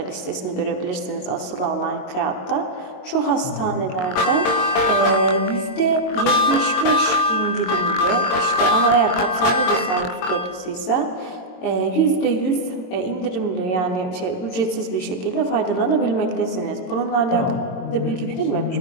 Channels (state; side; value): late; right; 22 ms